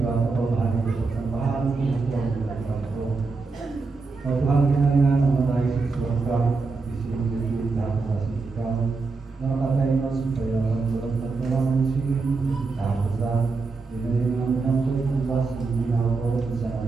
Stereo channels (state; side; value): quieter; left; 4.1 dB